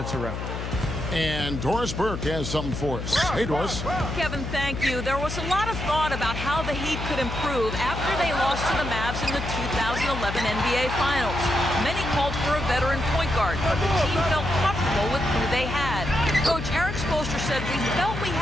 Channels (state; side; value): noise; left; hum, 6 dB below the sound